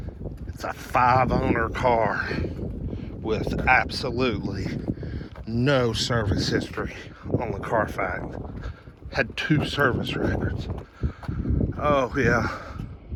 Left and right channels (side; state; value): both; identical; correlation 1.00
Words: It's a 5-owner car with absolutely no service history on the Carfax. Had 2 service records. Oh yeah,